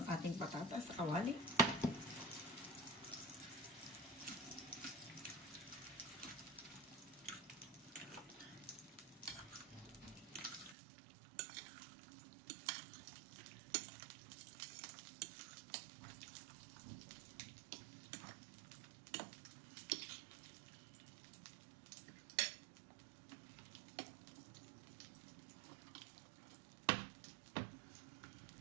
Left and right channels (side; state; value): left; drops out; at 10.8 s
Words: ating patatas sa kawali.